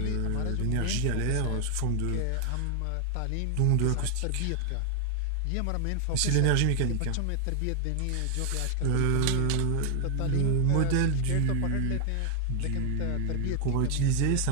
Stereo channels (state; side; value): different; both; correlation 0.00